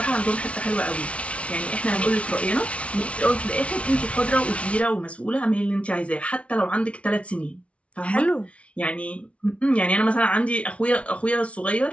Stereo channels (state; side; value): late; right; 0.062 ms